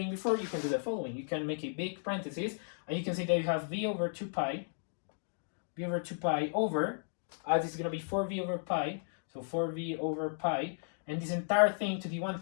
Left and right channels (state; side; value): silent; right; digital silence